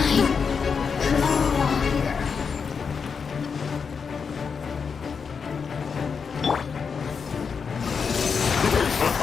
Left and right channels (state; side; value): quieter; right; 5.9 dB